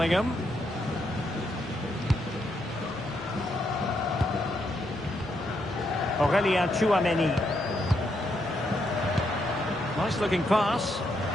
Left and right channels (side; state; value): both; normal; correlation 0.78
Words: Aurelien Tchouameni. Nice looking pass.